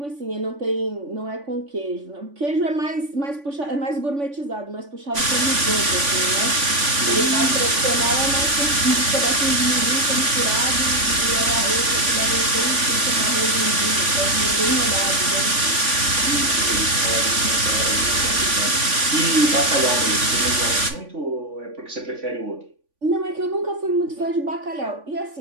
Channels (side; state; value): left; late; 3.5 ms